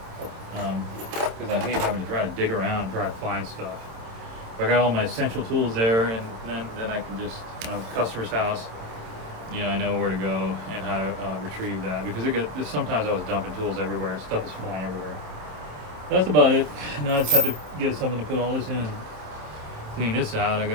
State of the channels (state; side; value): late; left; 27 ms